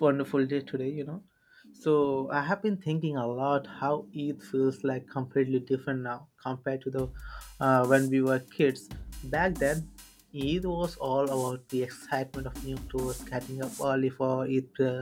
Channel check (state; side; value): identical; both; correlation 1.00